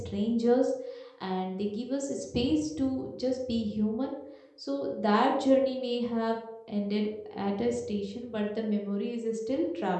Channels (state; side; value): identical; both; correlation 1.00